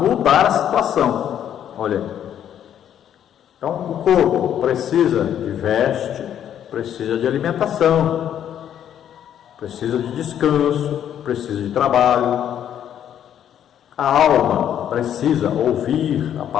a situação. Olha aí. Então, o corpo precisa de veste, precisa de alimentação, precisa de descanso, precisa de trabalho. A alma precisa ouvir a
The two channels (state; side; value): quieter; right; 10.0 dB